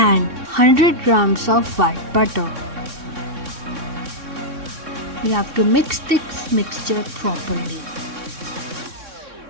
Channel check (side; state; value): left; late; 3.6 ms